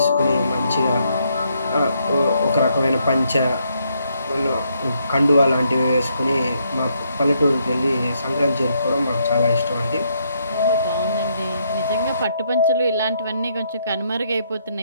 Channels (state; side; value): inverted; both; correlation -0.74